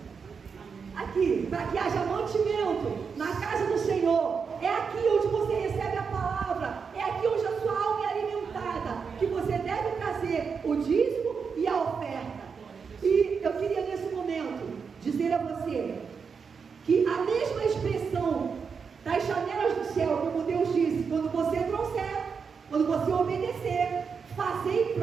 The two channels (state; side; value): quieter; left; 5.8 dB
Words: Aqui, para que haja mantimento na casa do Senhor. É aqui onde você recebe a palavra. É aqui onde a sua alma é alimentada, que você deve trazer o dízimo e a oferta. E eu queria nesse momento dizer a você que a mesma expressão das janelas do céu, como Deus disse, quando você trouxer, quando você obedecer, fazei